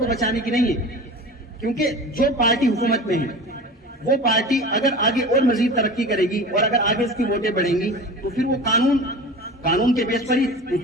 بچانے کی نہیں ہے، کیونکہ جو پارٹی حکومت میں ہے وہ پارٹی اگر آگے اور مزید ترقی کرے گی اور اگر آگے اس کی ووٹیں بڑھیں گی تو پھر وہ قانون کے بیس پر ہی کچھ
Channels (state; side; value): normal; both; correlation 0.35